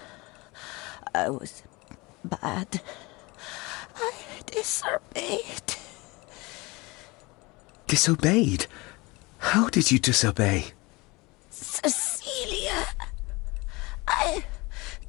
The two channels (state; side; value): quieter; right; 24.1 dB